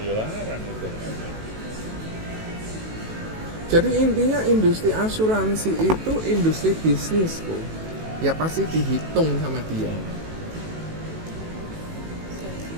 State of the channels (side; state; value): left; late; 18 ms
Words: larang itu namanya. Jadi intinya industri asuransi itu industri bisnis kok. Ya pasti dihitung sama dia.